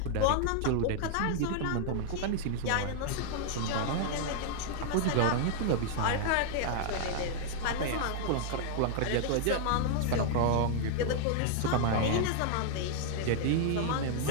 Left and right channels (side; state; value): both; different; correlation -0.01